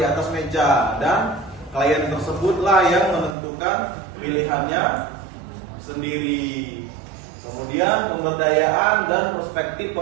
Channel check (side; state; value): left; drops out; at 3.4 s